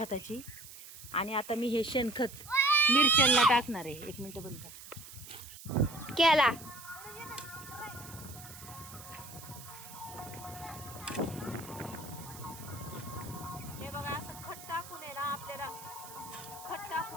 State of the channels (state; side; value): noise; right; hiss, 15 dB below the sound